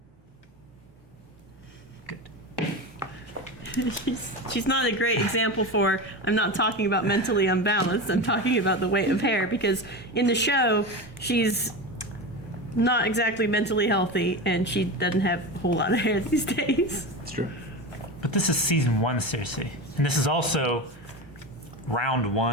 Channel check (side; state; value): both; normal; correlation 0.23